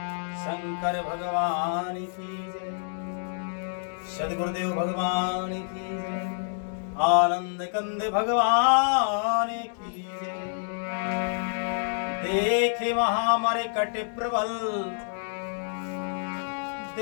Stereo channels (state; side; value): silent; right; digital silence